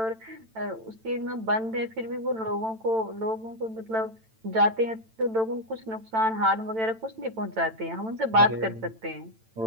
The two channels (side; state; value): left; late; 9.0 ms